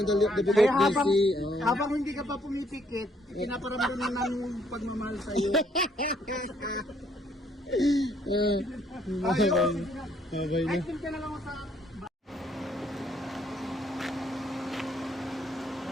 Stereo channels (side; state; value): both; normal; correlation 0.68